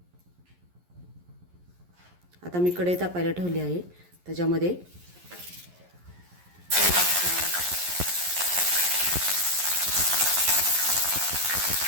आता मी कढई तापायला ठेवली आहे. त्याच्यामध्ये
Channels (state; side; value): late; left; 11 ms